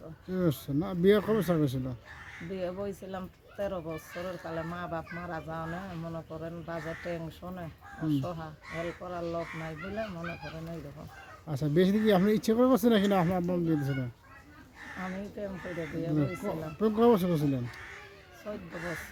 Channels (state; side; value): identical; both; correlation 1.00